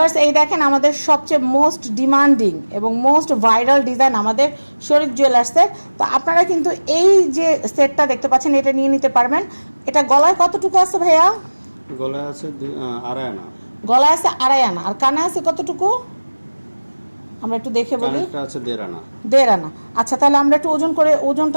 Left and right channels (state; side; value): inverted; both; correlation -1.00